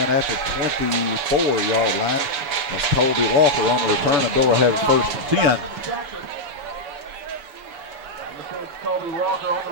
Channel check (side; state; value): left; late; 7.0 ms